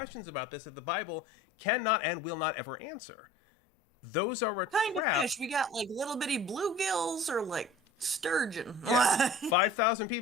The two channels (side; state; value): both; normal; correlation 0.43